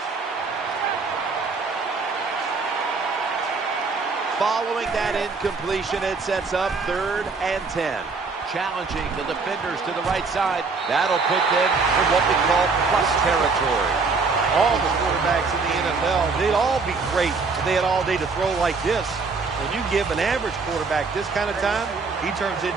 Following that incompletion, it sets up 3rd and 10. Challenging the defenders to the right side. That'll put them in what we call plus territory. All the quarterbacks in the NFL, they'd all be great if they had all day to throw like this. When you give an average quarterback this kind of time, he turns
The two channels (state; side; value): quieter; left; 4.4 dB